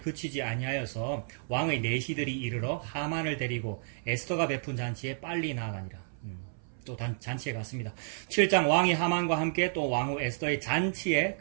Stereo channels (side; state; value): left; silent; 57 dB below the other